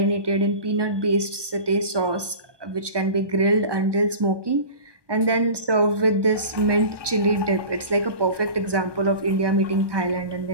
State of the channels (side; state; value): left; late; 1.2 ms